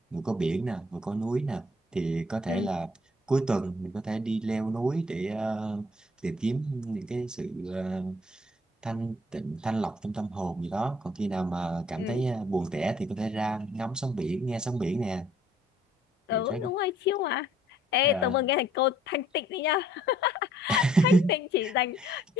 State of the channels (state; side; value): normal; both; correlation 0.61